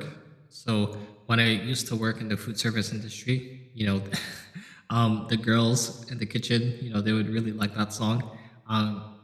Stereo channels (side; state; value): both; identical; correlation 1.00